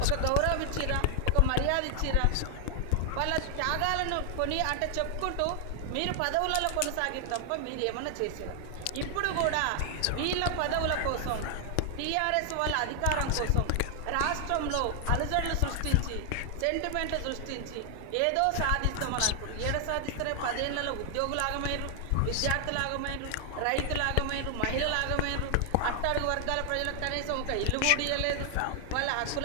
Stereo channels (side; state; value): both; different; correlation 0.00